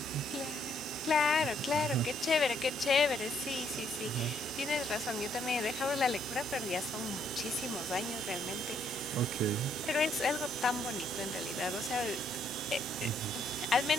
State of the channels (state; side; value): normal; both; correlation 0.70